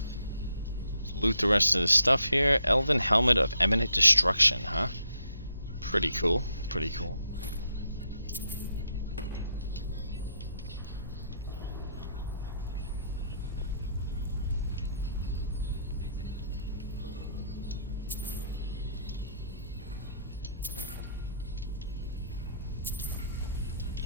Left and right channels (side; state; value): both; inverted; correlation -0.74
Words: Loot the rest of the stuff here. Elven Helmet of Eminent Destruction, huh? Pretty cool. Pretty cool.